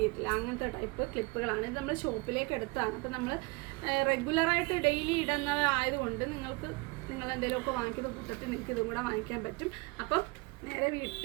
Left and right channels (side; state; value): left; quieter; 25.5 dB